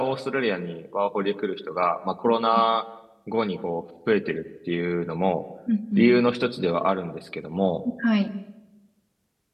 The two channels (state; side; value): identical; both; correlation 1.00